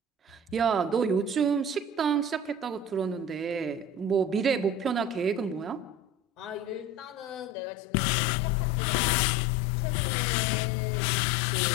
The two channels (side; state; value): right; drops out; at 7.6 s